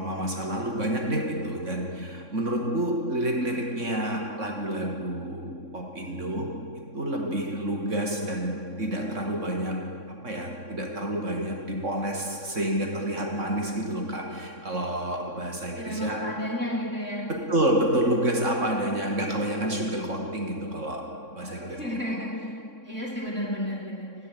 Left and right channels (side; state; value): left; late; 3.6 ms